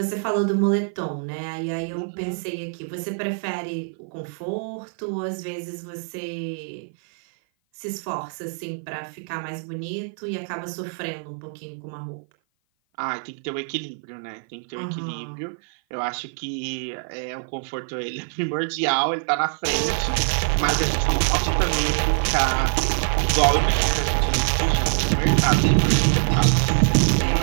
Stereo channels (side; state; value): left; silent; 55 dB below the other